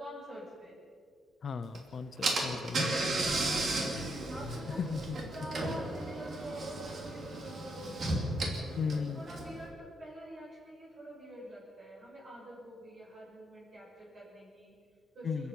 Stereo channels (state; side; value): normal; both; correlation 0.77